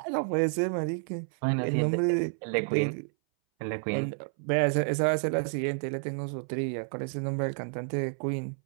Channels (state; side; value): silent; left; 58 dB below the other